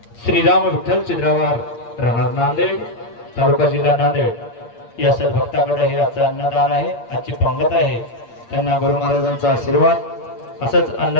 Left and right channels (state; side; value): late; right; 8.6 ms